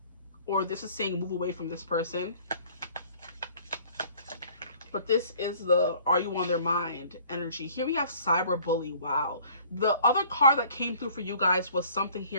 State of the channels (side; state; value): both; inverted; correlation -0.54